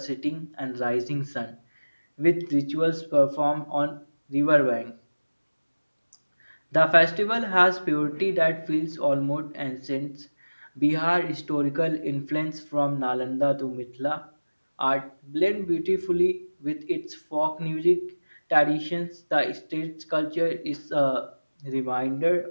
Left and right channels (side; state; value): both; inverted; correlation -1.00